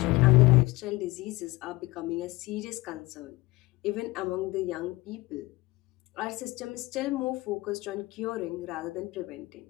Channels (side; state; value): right; quieter; 21.5 dB